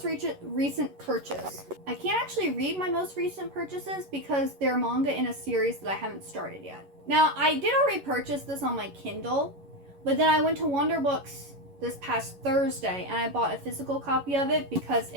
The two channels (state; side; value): late; left; 11 ms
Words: recent purchase. I can't actually read my most recent purchases because they're manga in a series that I haven't started yet. Now, I did already purchase this on my Kindle, but then I went to Wonder Books this past Thursday and I bought a physical copy of it because